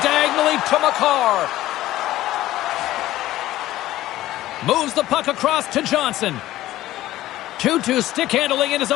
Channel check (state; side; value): quieter; right; 15.2 dB